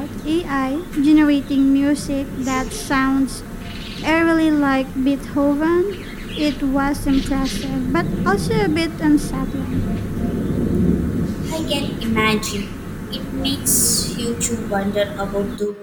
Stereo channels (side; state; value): both; identical; correlation 1.00